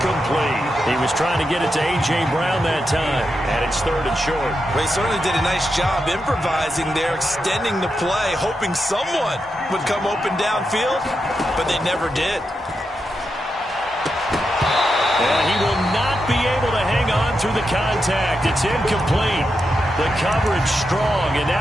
He was trying to get it to A.J. Brown that time, and it's third and short. Well, he certainly did a nice job improvising there, extending the play, hoping someone would come open downfield, but they never did. And he will not be able to hang on through the contact. It's incomplete. The coverage strong, and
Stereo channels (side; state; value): both; normal; correlation 0.86